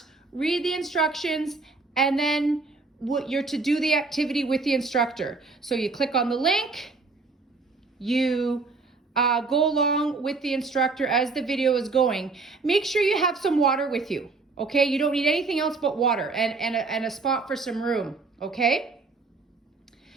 read the instructions, and then you're to do the activity with the instructor. So you click on the link, you go along with the instructor as the video is going. Make sure you have some water with you, okay? You don't need anything else but water and a spot for some room, okay?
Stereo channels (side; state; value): left; quieter; 4.0 dB